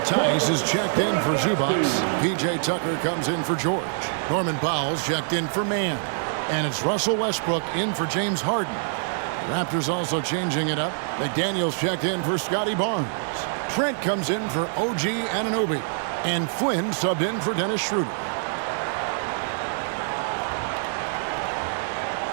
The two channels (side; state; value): left; silent; 62 dB below the other